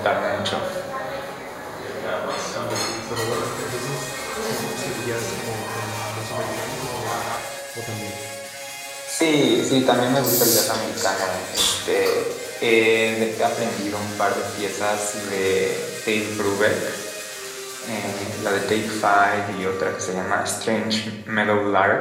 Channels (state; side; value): identical; both; correlation 1.00